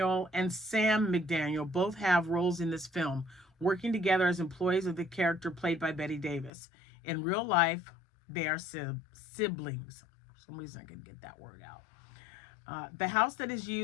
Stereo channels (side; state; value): right; drops out; at 6.5 s